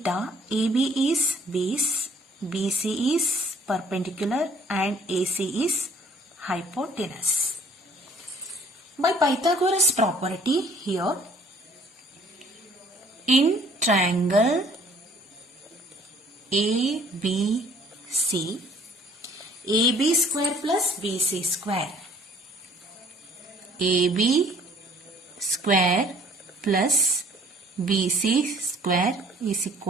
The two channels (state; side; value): normal; both; correlation 0.57